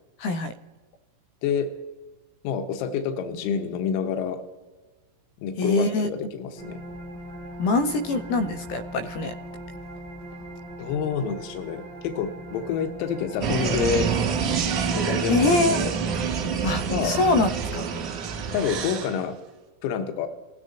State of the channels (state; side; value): late; right; 17 ms